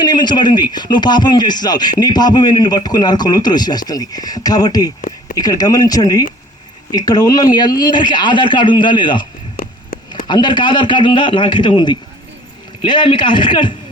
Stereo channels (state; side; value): normal; both; correlation 0.51